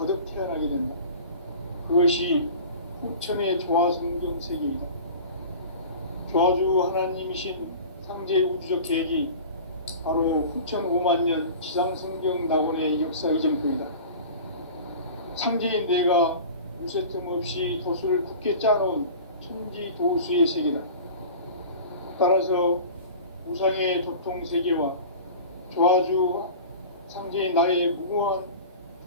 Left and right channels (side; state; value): both; inverted; correlation -0.38